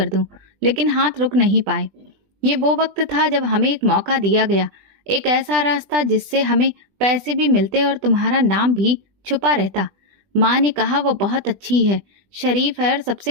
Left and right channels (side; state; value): left; late; 20 ms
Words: दूं, लेकिन हाथ रुक नहीं पाए। ये वो वक्त था जब हमें एक मौका दिया गया, एक ऐसा रास्ता जिससे हमें पैसे भी मिलते और तुम्हारा नाम भी छुपा रहता। माँ ने कहा वो बहुत अच्छी है, शरीफ है, और